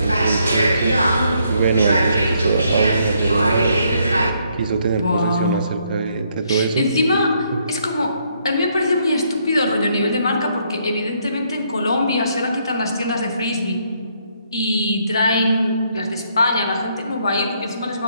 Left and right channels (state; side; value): inverted; both; correlation -0.72